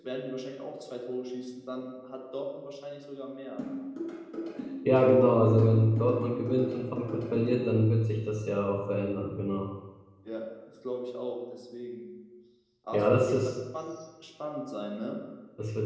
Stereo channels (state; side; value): identical; both; correlation 1.00